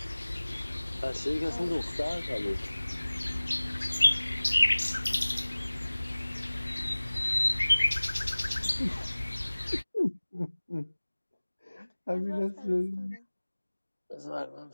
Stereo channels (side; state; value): both; inverted; correlation -1.00